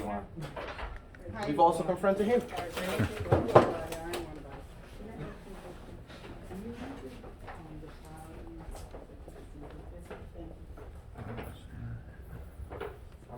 want. We've also confronted him.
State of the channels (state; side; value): identical; both; correlation 1.00